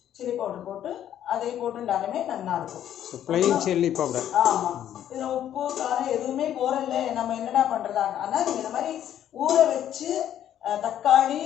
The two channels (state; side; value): quieter; right; 10.8 dB